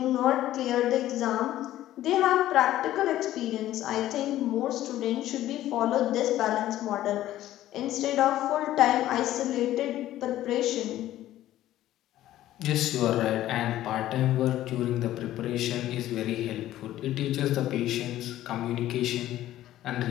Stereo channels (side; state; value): right; quieter; 13.8 dB